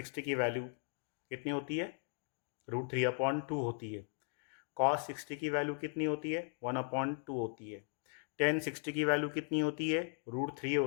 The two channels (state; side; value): silent; right; 53 dB below the other